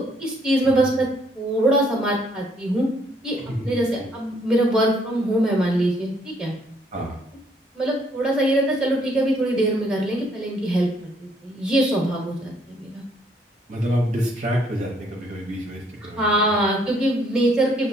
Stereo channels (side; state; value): both; normal; correlation 0.67